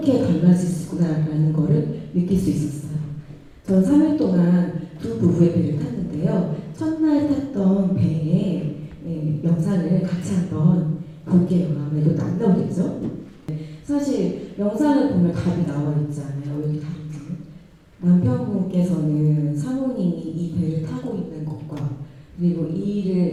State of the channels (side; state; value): both; identical; correlation 1.00